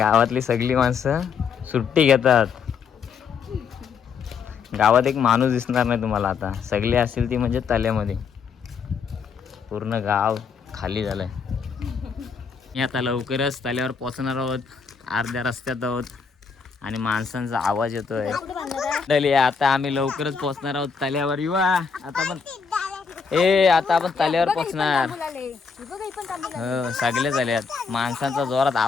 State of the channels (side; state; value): right; quieter; 5.8 dB